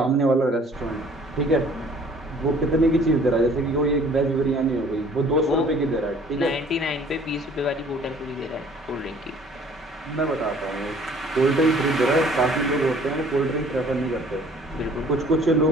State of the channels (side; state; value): both; normal; correlation 0.54